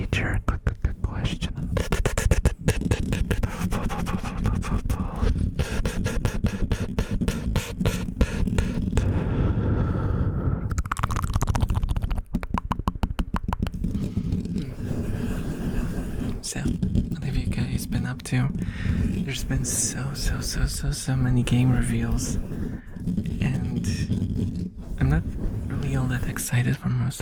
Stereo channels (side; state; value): both; identical; correlation 1.00